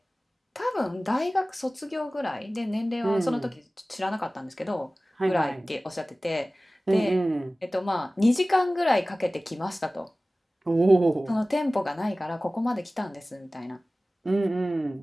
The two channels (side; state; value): both; normal; correlation 0.97